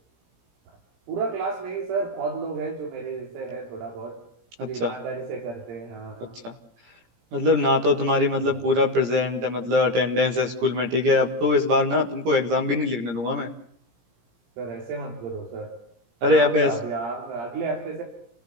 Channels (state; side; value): late; left; 17 ms